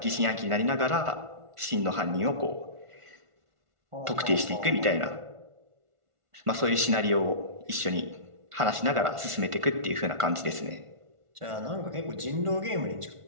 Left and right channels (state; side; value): late; left; 1.5 ms